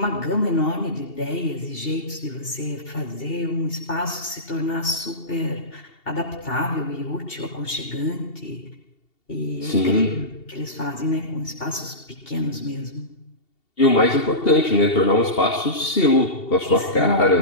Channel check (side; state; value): right; late; 2.7 ms